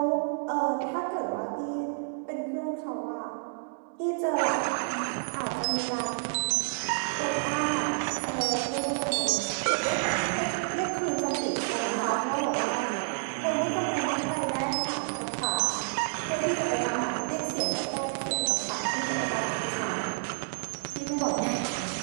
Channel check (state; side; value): silent; left; digital silence